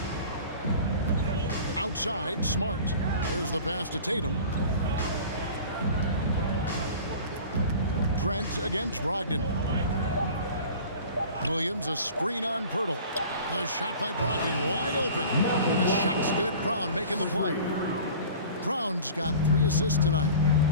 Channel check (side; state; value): both; inverted; correlation -0.41